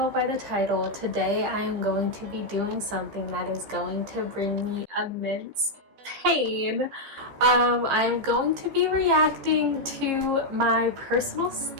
by the title, today I am going to be doing something that is going to bring me immense pain. I'm going to be reacting to my personal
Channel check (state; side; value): late; left; 15 ms